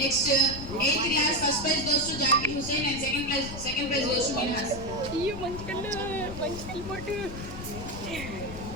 eighth class, first prize goes to Zakir Hussain and second prize goes to Minhas.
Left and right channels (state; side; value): noise; left; rumble, 10 dB below the sound